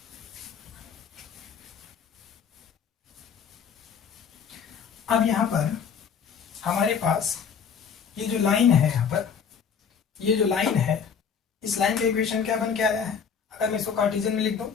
अब यहाँ पर हमारे पास ये जो लाइन है, यहाँ पर ये जो लाइन है, इस लाइन का इक्वेशन क्या बन के आया है, अगर मैं इसको कार्टेशियन में लिख दूं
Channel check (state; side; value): quieter; right; 6.8 dB